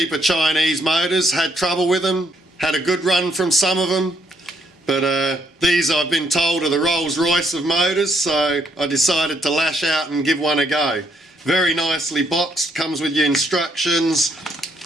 Chinese motors, had trouble with them, had a good run from some of them, but these I've been told are the Rolls Royce of motors, so I decided to lash out and give one a go. Very nicely boxed, comes with your instructions,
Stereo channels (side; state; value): both; normal; correlation 0.72